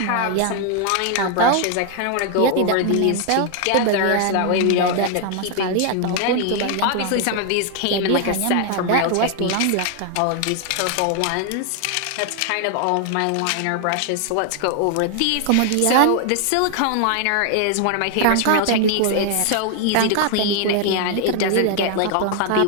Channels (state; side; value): different; both; correlation 0.00